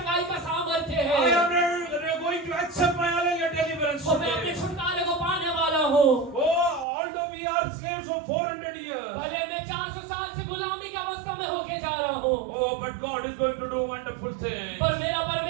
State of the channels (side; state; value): left; drops out; at 6.9 s